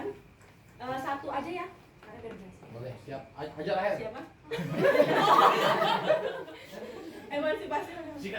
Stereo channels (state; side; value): identical; both; correlation 1.00